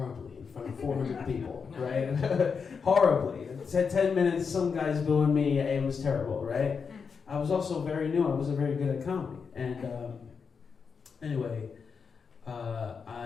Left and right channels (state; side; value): quieter; right; 5.8 dB